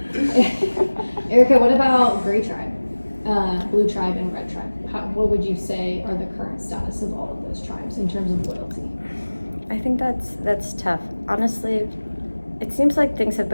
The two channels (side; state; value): both; inverted; correlation -1.00